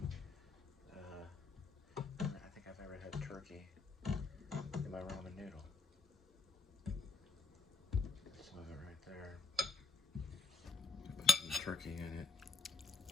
I think I've ever had turkey in my ramen noodle. Some of it right there. Put some turkey in it.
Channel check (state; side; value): quieter; right; 3.8 dB